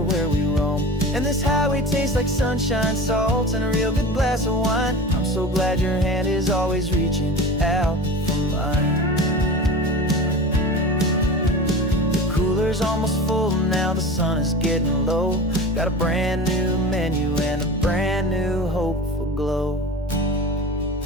where we roam. And this highway tastes like sunshine, salt, and a real good glass of wine. I'm so glad your hand is always reaching out for mine. The cooler's almost full now, the sun is getting low. Got a brand new menu and a brand new hopeful glow.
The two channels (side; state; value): both; normal; correlation 0.33